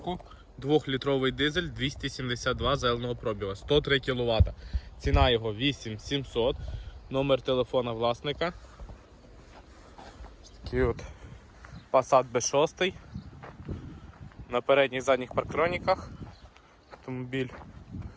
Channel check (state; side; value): identical; both; correlation 1.00